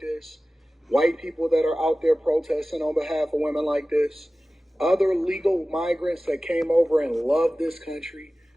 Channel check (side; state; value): both; normal; correlation 0.96